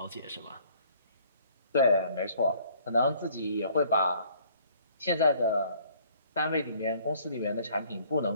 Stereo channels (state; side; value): inverted; both; correlation -0.58